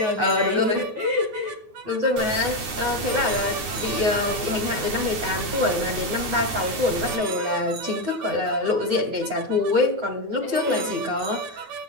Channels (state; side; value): late; left; 9.4 ms